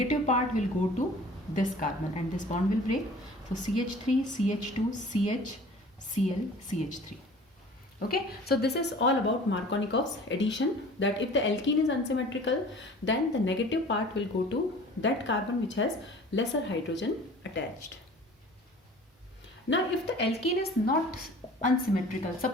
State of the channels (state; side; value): normal; both; correlation 0.45